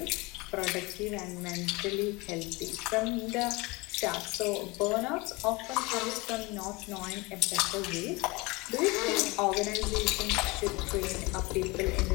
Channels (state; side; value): quieter; right; 24.6 dB